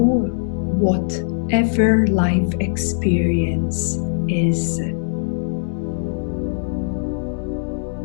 whatever life experience is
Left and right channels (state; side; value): silent; right; digital silence